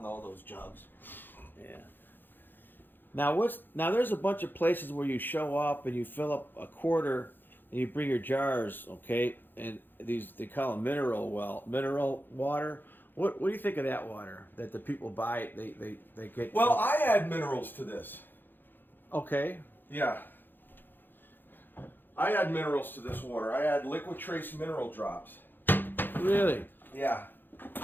all those jugs. Yeah. Now there's a bunch of places where you show up and you fill up a quarter and you bring your jars, okay? And they call them mineral water. What do you think of that water that the people buy? They get. Well, I add minerals to this. Okay. Yeah. I add minerals to this water. I add liquid trace mineral drops. Really? Yeah.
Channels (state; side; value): late; right; 0.094 ms